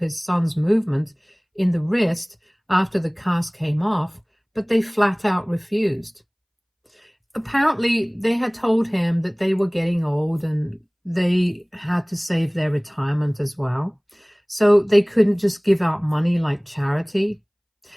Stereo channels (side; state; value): both; identical; correlation 1.00